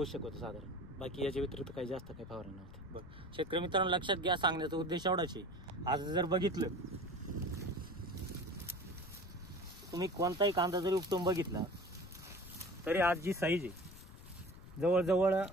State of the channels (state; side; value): noise; left; rumble, 17 dB below the sound